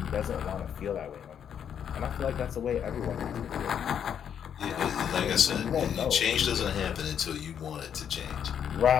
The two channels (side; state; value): right; quieter; 8.5 dB